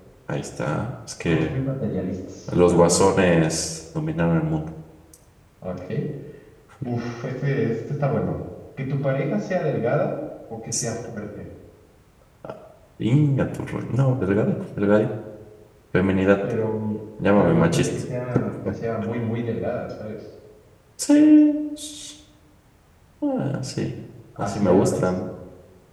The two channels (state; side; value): identical; both; correlation 1.00